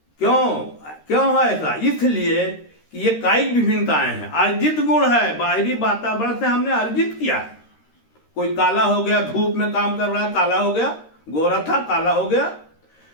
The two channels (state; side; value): late; right; 13 ms